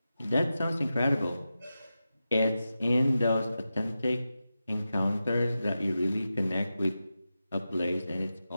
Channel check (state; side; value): inverted; both; correlation -0.92